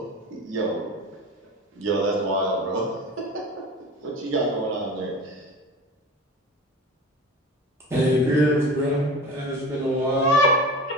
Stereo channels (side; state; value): both; normal; correlation 0.33